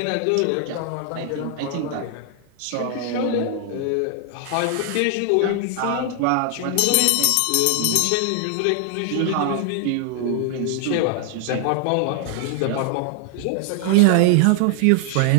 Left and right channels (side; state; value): both; different; correlation 0.00